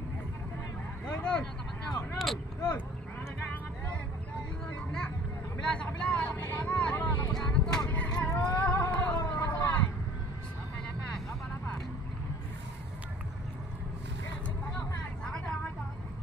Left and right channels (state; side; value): normal; both; correlation 0.50